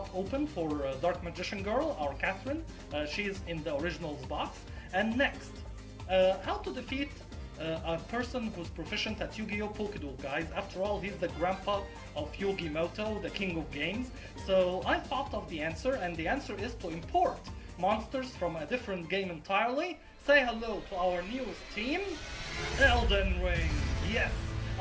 open for Dark Magician Girl, our Catherine. She's in the originals box. And next, how to defeat a person who's proficient at Yu-Gi-Oh! POKeDUEL, guys. After all, he's the grandpa of Yugi Moto, the king of games. So I thought of the answer, and the answer is to import monsters from a different game entirely. Say hello to our newest team, Elden Ring. Yes,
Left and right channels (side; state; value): both; identical; correlation 1.00